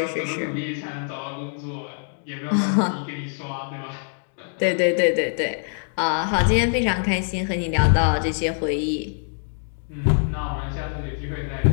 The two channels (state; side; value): silent; right; digital silence